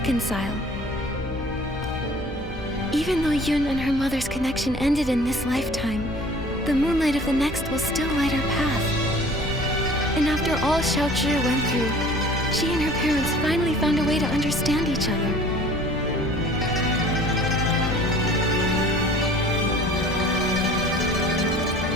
Even though Yun and her mother's connection ended in this lifetime, the moonlight of the next will still light our path. And after all Xiaozhi went through, she and her parents finally found a way to understand each other.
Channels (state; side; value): normal; both; correlation 0.48